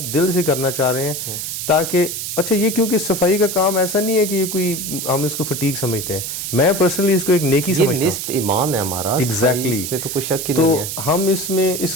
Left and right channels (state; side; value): noise; right; hiss, 5 dB below the sound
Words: دل سے کرنا چاہ رہے ہیں تاکہ اچھا یہ کیونکہ صفائی کا کام ایسا نہیں ہے کہ یہ کوئی ہم اس کو فٹیگ سمجھتے ہیں, میں پرسنلی اس کو ایک نیکی سمجھتا ہوں, نصف ایمان ہے ہمارا. ایگزیکٹلی, تو کوئی شک ہی تو نہیں ہے. ہم اس میں اس